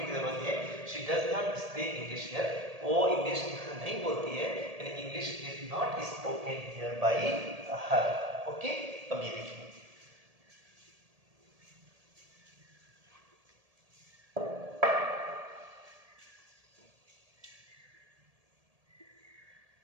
की जरूरत है। She does not speak English here, वो इंग्लिश नहीं बोलती है, यानी English is not spoken here bye her. Okay. अब ये देखिए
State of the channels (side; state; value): left; late; 1.7 ms